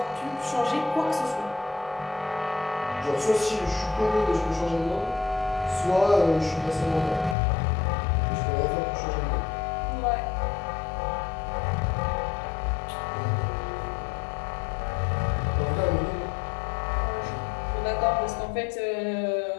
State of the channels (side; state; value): right; drops out; at 7.4 s